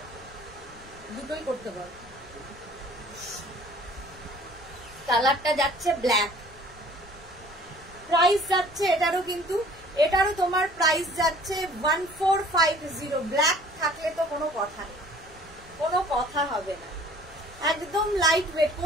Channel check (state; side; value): noise; left; rumble, 23 dB below the sound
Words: দুটোই করতে বল। কালারটা যাচ্ছে ব্ল্যাক, প্রাইস যাচ্ছে এটারও, কিন্তু এটারও তোমার প্রাইস যাচ্ছে 1450। ব্ল্যাক থাকলে তো কোনো কথা নেই, কোনো কথা হবে না। একদম লাইট ওয়েট,